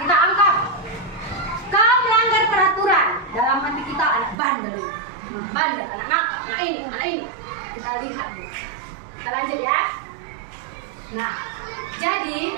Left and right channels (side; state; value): left; drops out; at 4.4 s